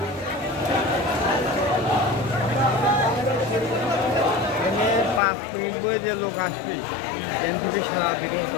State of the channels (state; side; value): drops out; right; at 5.2 s